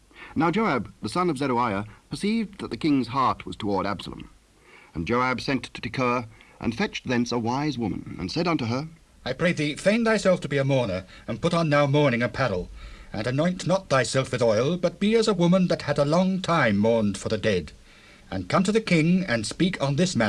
Now Joab, the son of Zeruiah, perceived that the king's heart was toward Absalom. And Joab sent to Tekoa, and fetched thence a wise woman, and said unto her, I pray thee, feign thyself to be a mourner, and put on now mourning apparel, and anoint not thyself with oil, but be as a woman that had a long time mourned for the dead, and come to the king, and speak on this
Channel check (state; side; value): identical; both; correlation 1.00